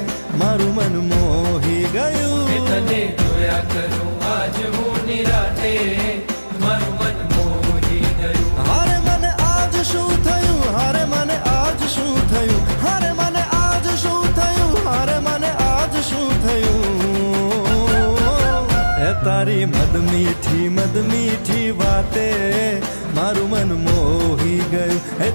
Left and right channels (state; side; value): inverted; both; correlation -1.00